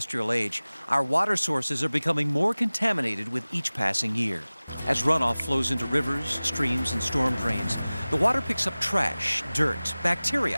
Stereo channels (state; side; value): inverted; both; correlation -0.99